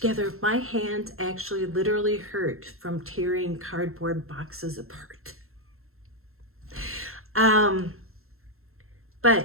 My hands actually literally hurt from tearing cardboard boxes apart.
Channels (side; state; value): left; late; 0.62 ms